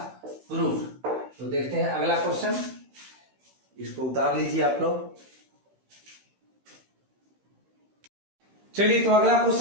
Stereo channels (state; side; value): late; left; 16 ms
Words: प्रूफ। तो देखते हैं अगला क्वेश्चन, इसको उतार लीजिए आप लोग। चलिए तो अगला